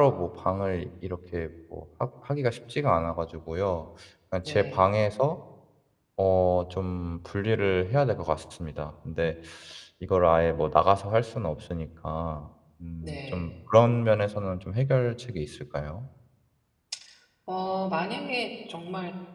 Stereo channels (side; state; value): both; identical; correlation 1.00